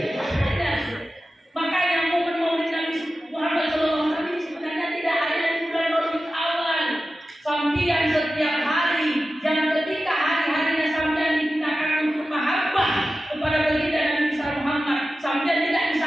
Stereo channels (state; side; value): normal; both; correlation 0.94